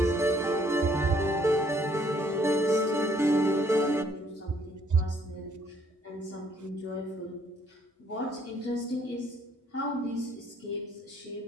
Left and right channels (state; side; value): normal; both; correlation 0.65